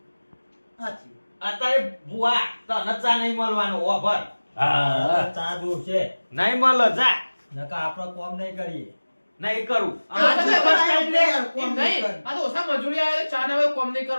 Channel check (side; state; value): both; inverted; correlation -1.00